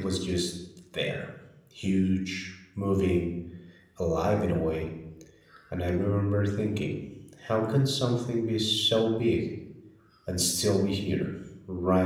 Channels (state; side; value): identical; both; correlation 1.00